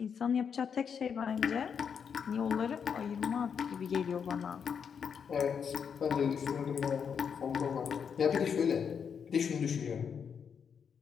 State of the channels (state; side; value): quieter; right; 7.0 dB